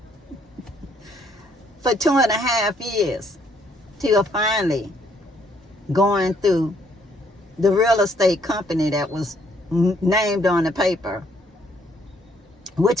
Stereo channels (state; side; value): normal; both; correlation 0.68